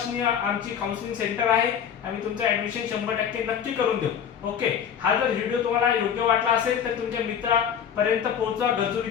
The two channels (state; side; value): quieter; right; 8.3 dB